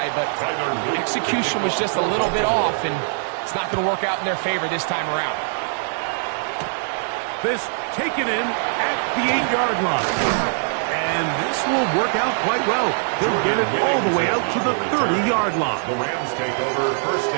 but execution was just a little bit off, and it's not going to work out in their favor this time around. This taken in at the 8-yard line. And this will work out quite well. They'll get it all the way out to the 30-yard line. The Rams take over 1st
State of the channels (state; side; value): silent; left; digital silence